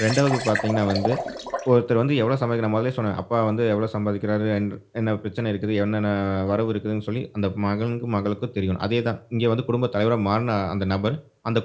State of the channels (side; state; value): both; identical; correlation 1.00